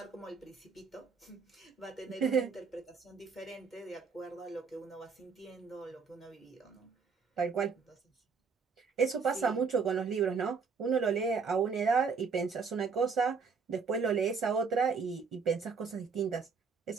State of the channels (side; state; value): left; quieter; 5.3 dB